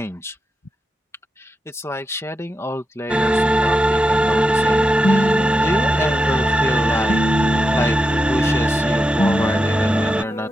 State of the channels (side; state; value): both; normal; correlation 0.88